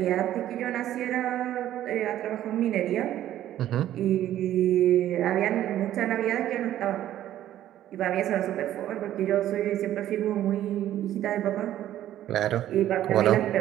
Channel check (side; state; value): left; quieter; 12.5 dB